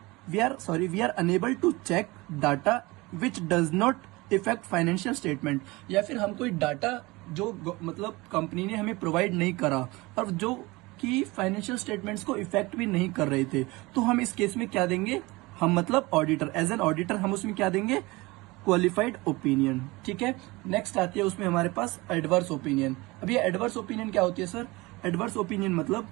we are unable to check data which does not affect financial statement। या फिर हम कोई डाटा जो मतलब कंपनी ने हमें प्रोवाइड नहीं करा और जो कि फाइनेंशियल स्टेटमेंट्स को इफेक्ट भी नहीं कर रहे थे, तो हम इस केस में क्या देंगे, हम मतलब ऑडिटर, एज एन ऑडिटर हम उसमें क्या देंगे, क्वालिफाइड ओपिनियन। ठीक है, नेक्स्ट आती है उसमें हमारे पास एडवर्स ओपिनियन। अब ये एडवर्स ओपिनियन क्या होती है सर? एडवर्स ओपिनियन मतलब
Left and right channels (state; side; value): quieter; left; 22.5 dB